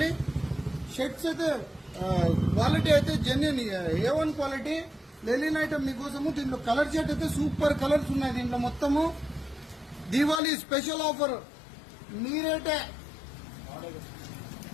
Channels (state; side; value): drops out; right; at 10.4 s